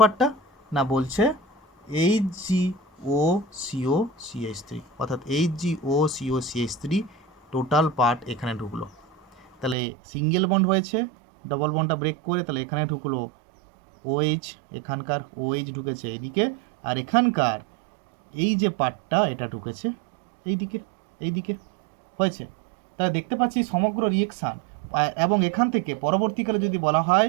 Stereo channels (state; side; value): drops out; left; at 9.8 s